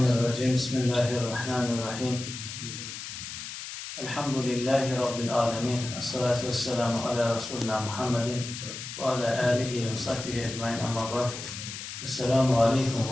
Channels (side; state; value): left; noise; hiss, 9 dB below the sound